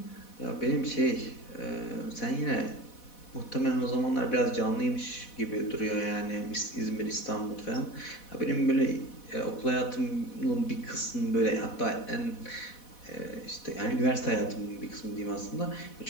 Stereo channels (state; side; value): late; right; 4.1 ms